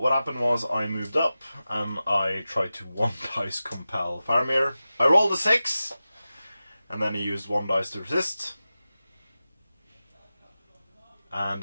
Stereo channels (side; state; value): both; inverted; correlation -0.94